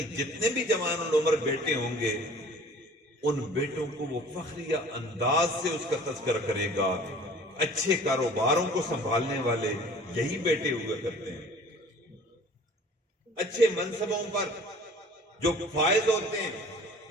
جتنے بھی جوان العمر بیٹے ہوں گے ان بیٹوں کو وہ فخریہ انداز سے اس کا تذکرہ کرے گا۔ اچھے کاروباروں کو سنبھالنے والے یہی بیٹے ہوا کرتے ہیں، اچھے منصبوں پر جو فائز ہوتے ہیں۔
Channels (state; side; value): normal; both; correlation 0.48